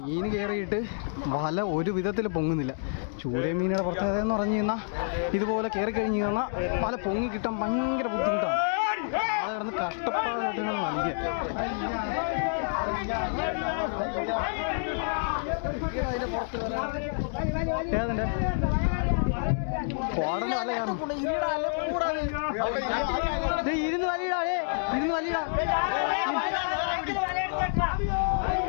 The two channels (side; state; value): right; silent; digital silence